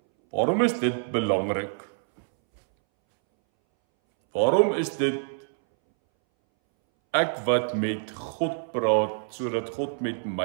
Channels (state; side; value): silent; left; 61 dB below the other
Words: Waarom is dit belangrik? Waarom is dit ek wat met God praat, sodat God met